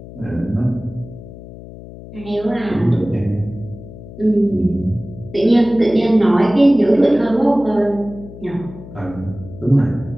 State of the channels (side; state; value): left; noise; hum, 16 dB below the sound